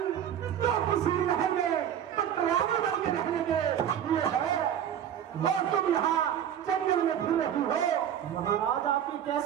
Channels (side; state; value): left; quieter; 9.7 dB